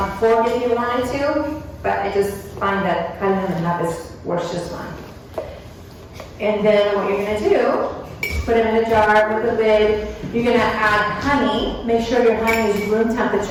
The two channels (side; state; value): both; identical; correlation 1.00